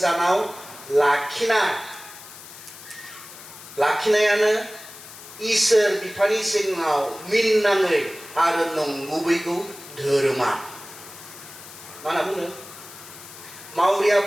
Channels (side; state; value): left; noise; hiss, 16 dB below the sound